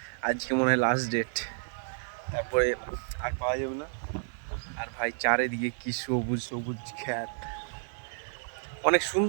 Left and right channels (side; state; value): left; silent; 57 dB below the other